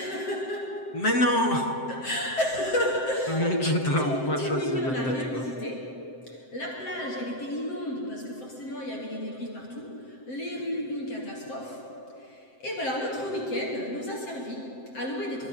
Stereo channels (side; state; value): right; late; 7.7 ms